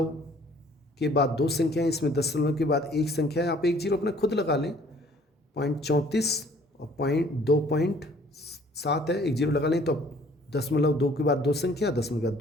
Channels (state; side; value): normal; both; correlation 0.57